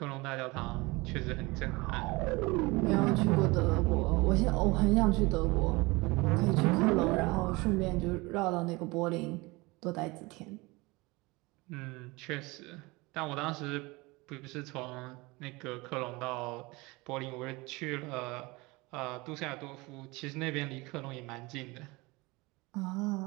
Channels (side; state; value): left; quieter; 23.8 dB